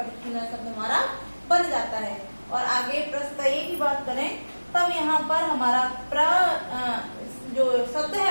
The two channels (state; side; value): inverted; both; correlation -1.00